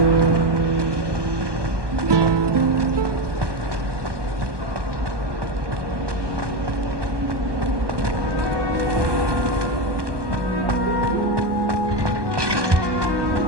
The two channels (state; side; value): late; left; 1.2 ms